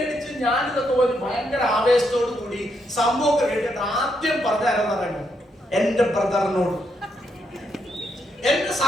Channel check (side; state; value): both; normal; correlation 0.78